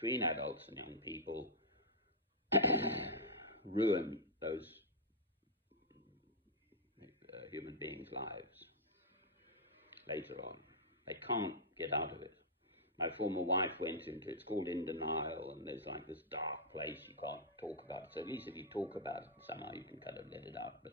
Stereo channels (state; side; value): normal; both; correlation -0.07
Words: adults and young people ruin those human beings' lives later on. They can't get out of it. My former wife went into, it's called In Denial, and there's like this dark place you can't talk about. So at least if you talk about it somehow you can kind of let it out.